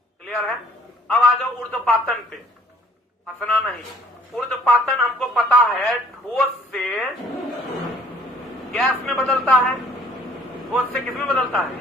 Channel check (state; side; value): normal; both; correlation 0.58